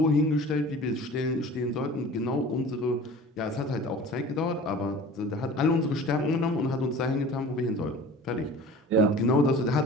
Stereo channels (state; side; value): normal; both; correlation 0.41